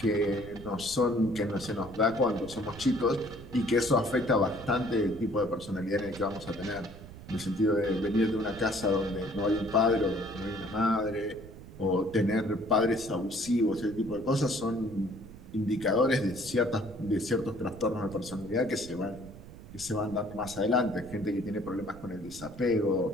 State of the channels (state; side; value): noise; right; rumble, 16 dB below the sound